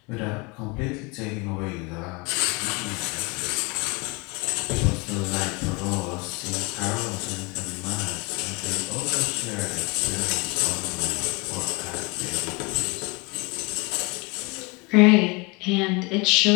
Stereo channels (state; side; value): quieter; right; 27.7 dB